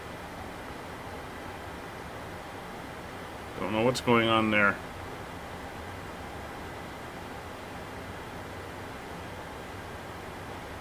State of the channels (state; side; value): identical; both; correlation 1.00